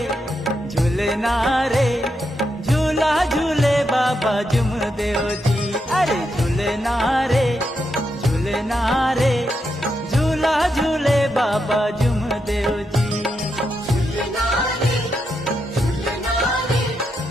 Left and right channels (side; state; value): both; normal; correlation 0.83